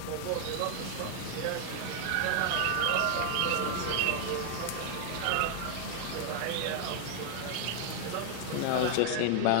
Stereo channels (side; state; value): both; different; correlation 0.00